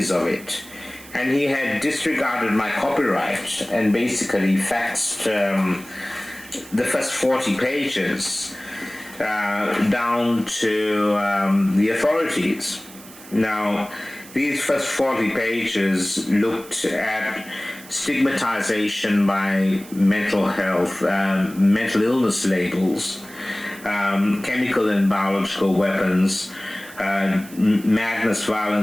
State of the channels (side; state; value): right; noise; hiss, 19 dB below the sound